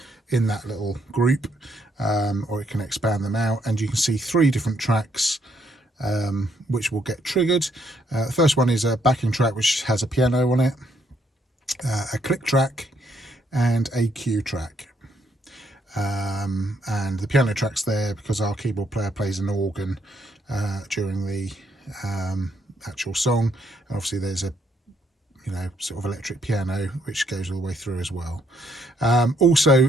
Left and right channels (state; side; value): normal; both; correlation 0.72